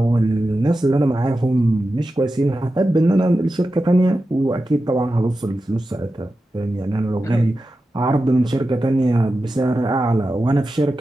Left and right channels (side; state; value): both; normal; correlation 0.92